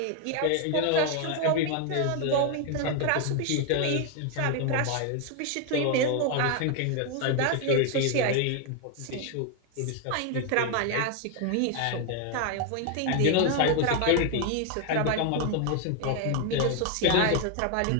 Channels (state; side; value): different; both; correlation 0.01